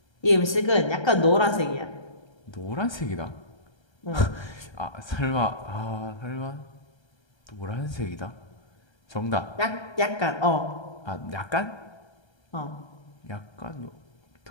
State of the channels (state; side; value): late; right; 1.3 ms